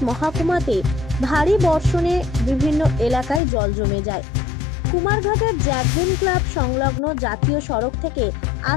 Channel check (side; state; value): right; drops out; at 3.4 s